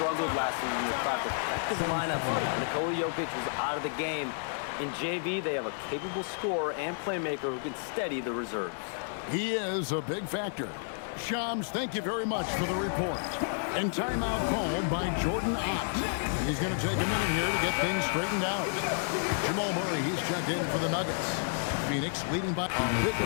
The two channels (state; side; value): silent; right; digital silence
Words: last season to craft effective lineups. Nikola Jokic was out of the game. In JV, they have a capable scorer and playmaker who can steady the reserves. He is a big factor. Shams, thank you very much for the report. And timeout called by Jordan Ott. He's going to take a minute here to get things straightened out. Jamal Murray, he's checked in for the Nuggets. Phoenix leading by a big